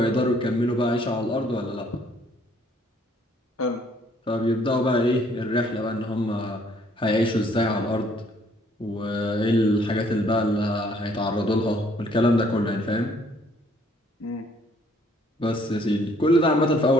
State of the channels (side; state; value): both; normal; correlation 0.63